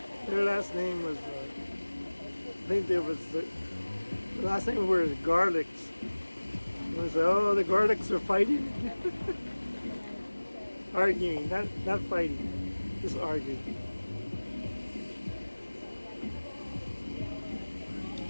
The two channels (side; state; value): both; inverted; correlation -1.00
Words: their last name was, I think there was the last name were the Garlics. And it was like, oh, the Garlics are fighting. Arguing, not fighting, just arguing.